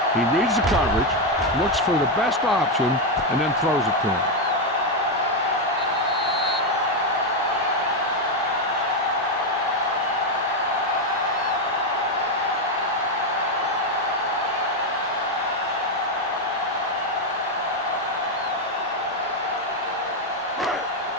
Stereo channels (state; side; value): normal; both; correlation 0.05